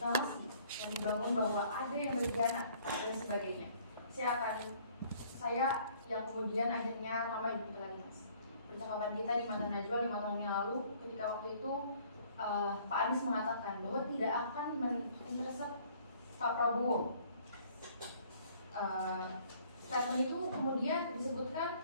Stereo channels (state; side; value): inverted; both; correlation -0.58